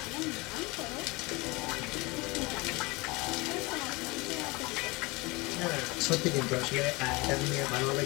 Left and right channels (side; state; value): right; quieter; 24.7 dB